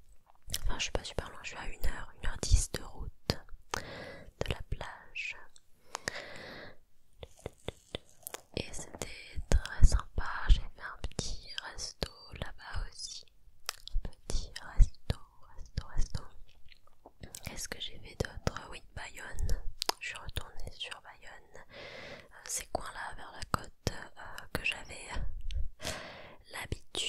Enfin je suis pas super loin, je suis à 1h10 de route de la plage. Et c'était très sympa, j'ai fait un petit resto là-bas aussi. Petit resto. Qu'est-ce que j'ai fait d'autre? Oui, Bayonne. Je suis retournée sur Bayonne. Ces coins-là vers la côte que j'avais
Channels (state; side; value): identical; both; correlation 1.00